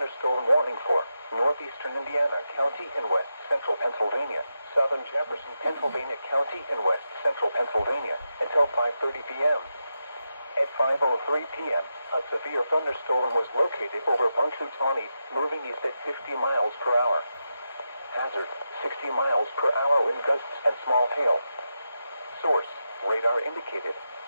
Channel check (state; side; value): inverted; both; correlation -0.88